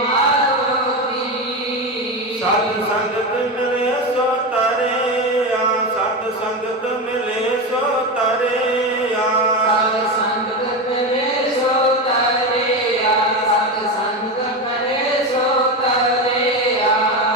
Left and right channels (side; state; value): both; normal; correlation 0.18